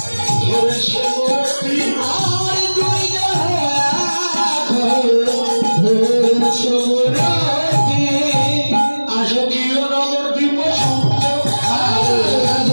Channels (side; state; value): both; inverted; correlation -1.00